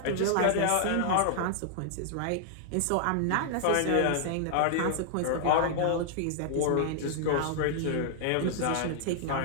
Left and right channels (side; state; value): both; different; correlation -0.01